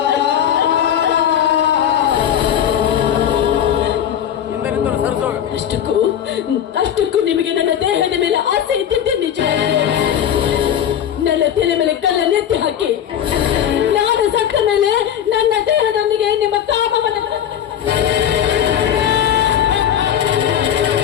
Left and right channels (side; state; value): right; quieter; 9.6 dB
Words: ಅಷ್ಟಕ್ಕೂ ನಿಮಗೆ ನನ್ನ ದೇಹ